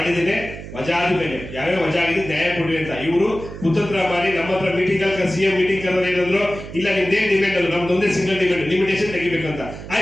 ವಜಾ ಆದ್ಮೇಲೆ ಯಾವ್ಯಾವ ವಜಾ ಆಗಿದೆ ನ್ಯಾಯ ಕೊಡ್ರಿ ಅಂತ ಇವರು ಕುತಂತ್ರ ಮಾಡಿ ನಮ್ಮ ಹತ್ರ ಮೀಟಿಂಗ್ ಅಲ್ಲಿ CM ಮೀಟಿಂಗ್ ಕರೆದ್ರೆ ಏನಂದ್ರು, ಇಲ್ಲ ನಿಮ್ದೇನ್ ಡಿಮ್ಯಾಂಡ್ ಅಲ್ಲ, ನಮ್ದೊಂದೇ ಸಿಂಗಲ್ ಡಿಮ್ಯಾಂಡ್, ಲಿಮಿಟೇಷನ್ ತೆಗಿಬೇಕಂತ.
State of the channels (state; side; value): noise; right; hum, 12 dB below the sound